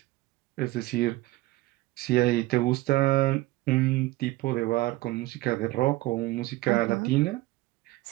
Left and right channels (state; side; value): quieter; left; 18.8 dB